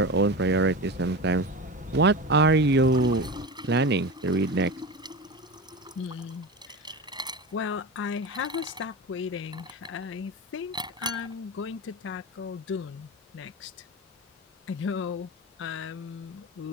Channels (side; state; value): both; normal; correlation 0.26